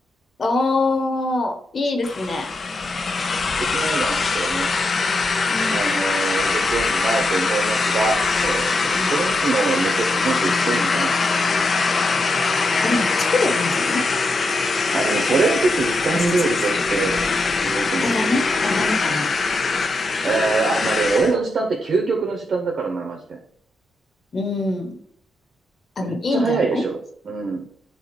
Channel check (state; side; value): normal; both; correlation 0.84